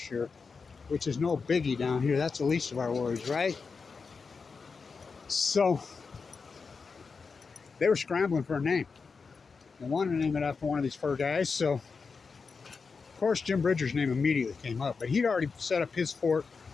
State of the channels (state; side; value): quieter; right; 5.0 dB